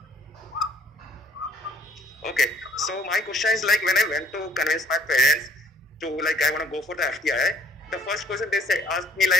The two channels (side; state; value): both; normal; correlation 0.61